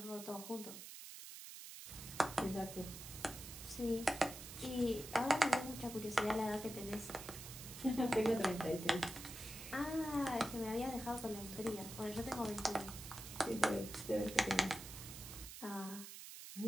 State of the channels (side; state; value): right; noise; hiss, 11 dB below the sound